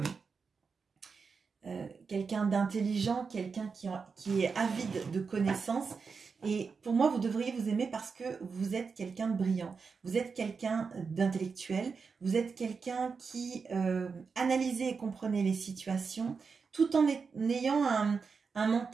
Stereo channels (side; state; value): left; quieter; 5.2 dB